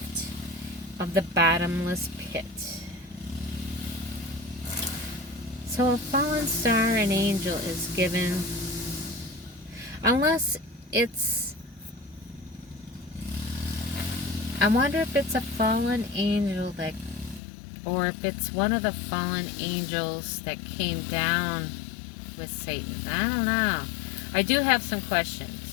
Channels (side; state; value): right; drops out; at 17.4 s